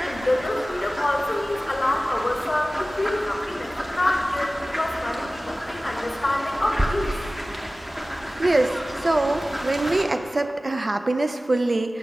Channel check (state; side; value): normal; both; correlation 0.97